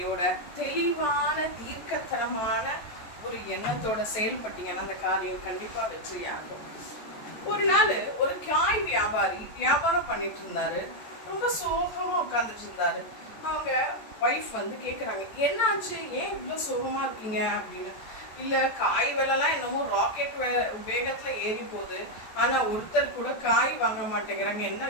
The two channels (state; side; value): late; right; 14 ms